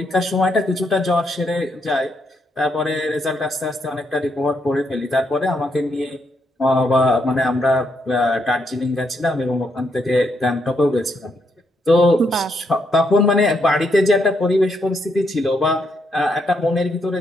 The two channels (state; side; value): normal; both; correlation 0.77